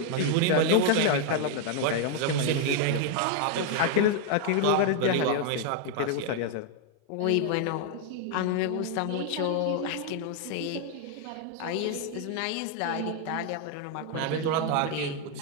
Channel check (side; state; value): both; different; correlation 0.00